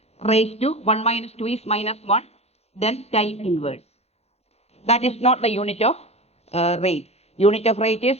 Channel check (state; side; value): late; right; 0.30 ms